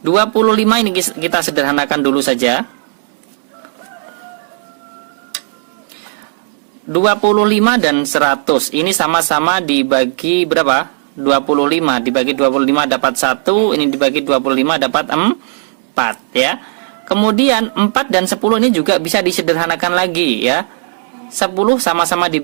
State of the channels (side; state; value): left; silent; digital silence